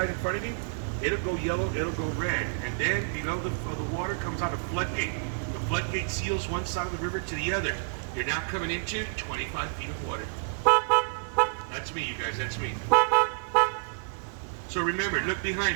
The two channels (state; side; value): silent; left; 59 dB below the other